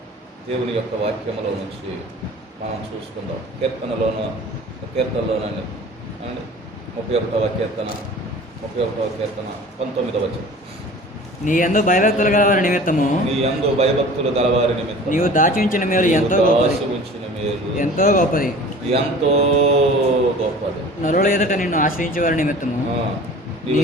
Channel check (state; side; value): normal; both; correlation 0.43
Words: దేవుని యొక్క వాక్యములో నుంచి మనం చూసుకుందాం. కీర్తనలోనండి అండ్ 31వ కీర్తన 19వ వచనం. నీ యందు భయభక్తులు గలవారి నిమిత్తము నీవు దాచి ఉంచిన మేలు ఎంతో గొప్పది. నరుల ఎదుట నిన్ను ఆశ్రయించే వారి నిమిత్తము